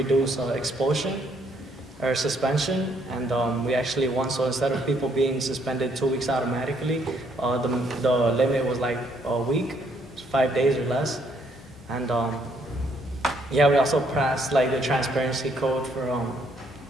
expulsion or suspension, and we actually won. So instead of people being suspended 2 weeks automatically, the limit was like a week, 5 days or less. And yeah, we also passed like the transparency code for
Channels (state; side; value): normal; both; correlation 0.69